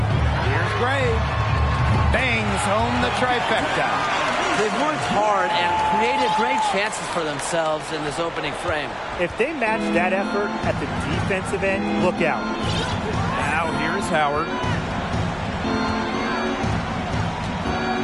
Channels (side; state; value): both; identical; correlation 1.00